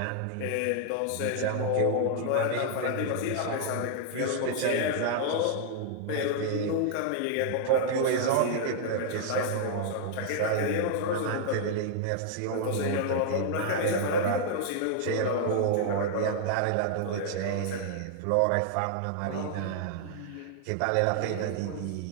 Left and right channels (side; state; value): both; different; correlation -0.01